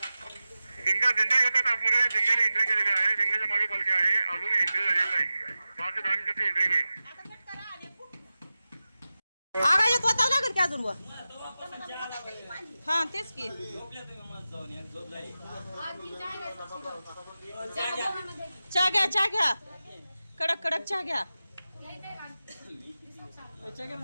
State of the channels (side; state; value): both; inverted; correlation -0.94